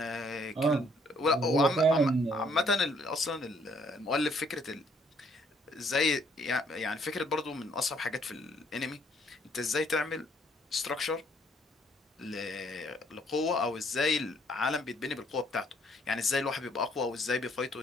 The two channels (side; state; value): both; normal; correlation 0.65